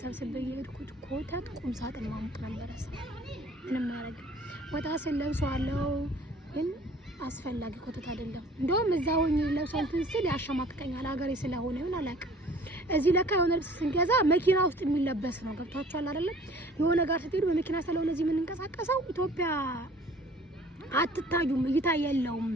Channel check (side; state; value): both; normal; correlation 0.51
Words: ሰብስቤ የሄድኩት ኮተት ቁም ሳጥን ማሙቅ ነበረ። ምንም ያረግ ወጣ ስል ለብሰዋለሁ ግን አስፈላጊ ኮተት አይደለም። እንደውም እዛው ለብሰን ትንስል ያሸማቅቀኛል። ሀገሬ ስለሆነ ይሁን አላውቅም። እዚህ ለካ የሆነ ልብስ ስንገዛ መኪና ውስጥ የሚለበስ ነው። ገብታችኋል አይደለም? የሆነ ጋር ስትሄዱ በመኪና ስለሆነ እዚህ የምንንቀሳቀሰው ኢትዮጵያ አትታዩም፣ እይታ የለውም።